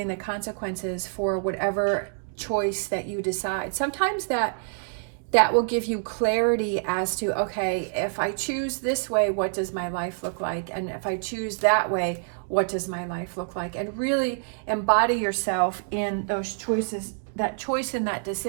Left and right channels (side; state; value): left; silent; digital silence